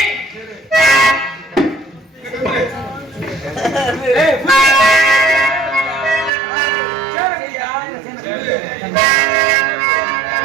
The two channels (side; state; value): left; drops out; at 6.3 s